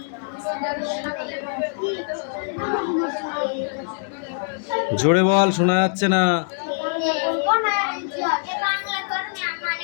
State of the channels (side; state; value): right; silent; 63 dB below the other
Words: জোরে বল, শোনা যাচ্ছে না।